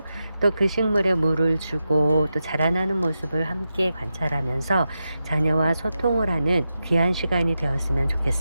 또 그 식물에 물을 주고 또 자라나는 모습을 함께 관찰하면서 자녀와 소통을 하는 귀한 시간이 되었으면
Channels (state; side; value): inverted; both; correlation -0.89